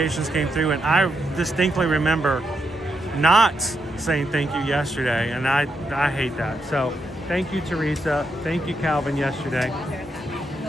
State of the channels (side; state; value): both; normal; correlation 0.82